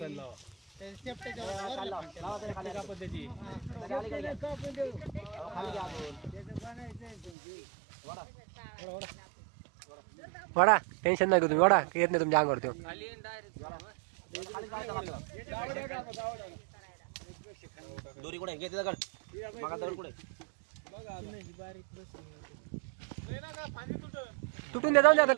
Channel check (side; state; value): left; drops out; at 7.3 s